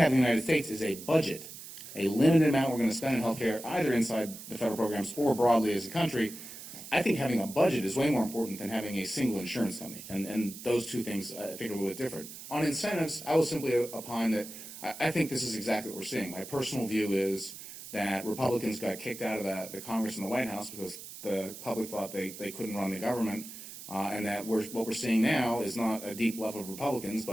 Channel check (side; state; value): right; noise; hiss, 13 dB below the sound